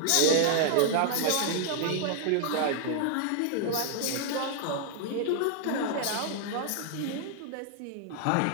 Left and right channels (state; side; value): different; both; correlation -0.01